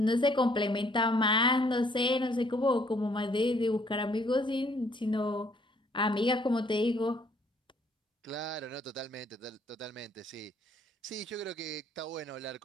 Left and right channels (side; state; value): both; normal; correlation 0.64